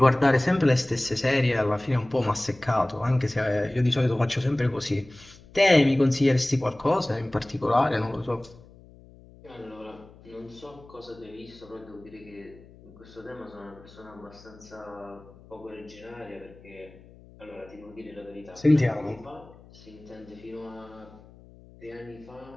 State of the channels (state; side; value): noise; left; hum, 23 dB below the sound